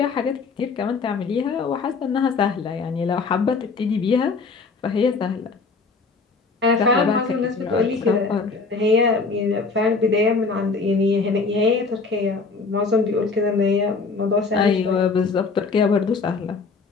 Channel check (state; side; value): quieter; right; 4.4 dB